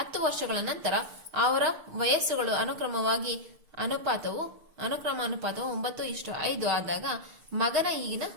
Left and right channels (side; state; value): left; late; 6.3 ms